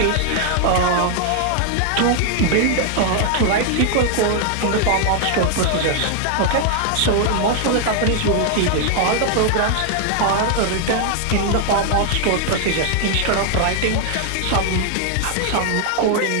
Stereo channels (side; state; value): both; different; correlation 0.00